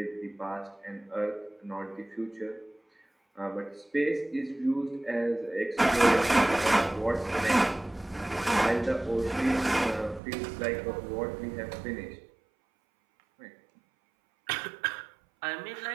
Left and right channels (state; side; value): drops out; left; at 10.2 s